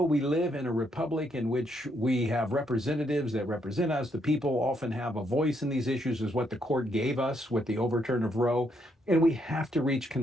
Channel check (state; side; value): normal; both; correlation 0.75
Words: we live in a republic in which we have representatives that represent us. The people often have a voice in these issues, is what the court gave us with the overturn of Roe. And we have to reach